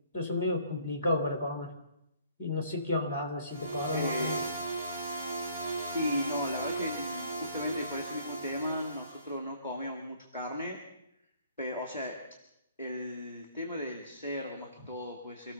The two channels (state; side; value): inverted; both; correlation -0.59